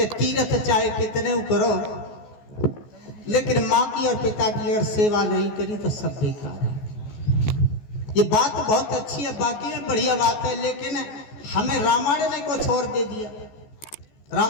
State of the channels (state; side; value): late; right; 14 ms